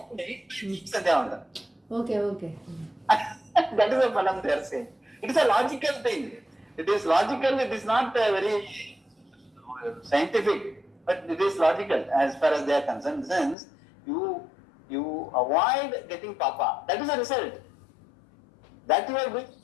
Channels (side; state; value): right; drops out; at 13.6 s